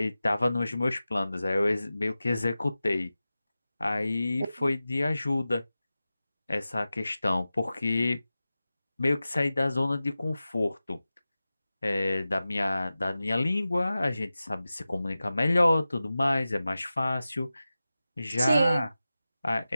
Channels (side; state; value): both; inverted; correlation -0.95